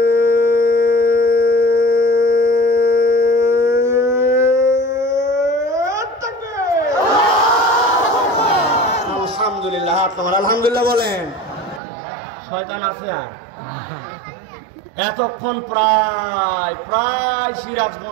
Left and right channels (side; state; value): left; drops out; at 11.8 s